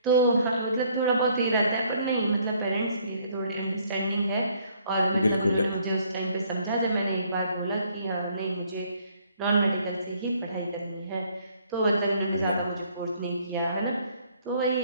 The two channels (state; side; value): inverted; both; correlation -0.63